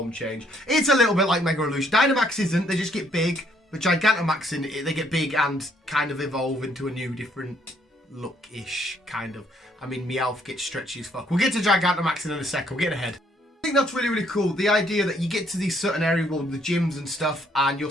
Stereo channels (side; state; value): both; normal; correlation 0.67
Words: change. It's a little bit like Mega Evolution. Dynamax isn't. They just get big. But Gigantamaxing, they get big and kind of evolve into a new, different look-ish, kind of. I mean, Meowth gets stretchy as fuck. We'll get to Gigantamaxing in a second. We're getting ahead. I think that's really, really cool. The idea that you get to these certain areas, well, the gyms and stuff, and you'll